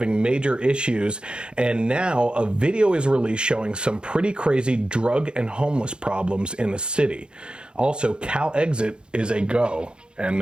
major issues, and now a video is released showing some pretty crazy drug and homeless problems in the city. Also, CalExit is a go, and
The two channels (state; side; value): late; left; 0.051 ms